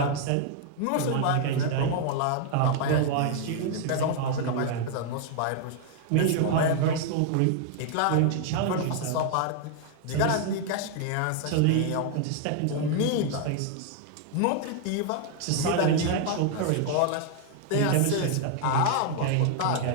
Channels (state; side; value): different; both; correlation 0.00